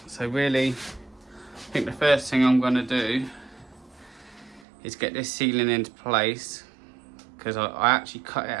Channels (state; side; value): drops out; left; at 4.7 s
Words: So really, I think the first thing I'm going to do is get this ceiling into place, because I actually cut it